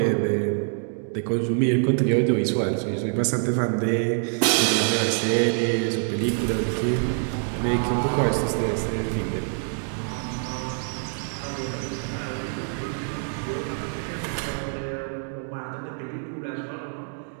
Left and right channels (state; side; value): silent; left; 58 dB below the other